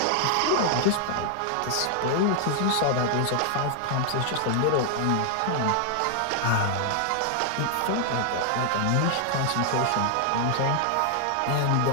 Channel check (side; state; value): both; different; correlation 0.00